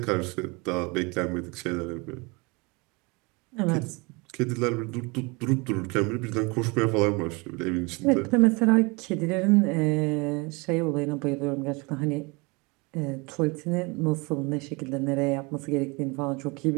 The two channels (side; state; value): left; quieter; 27.7 dB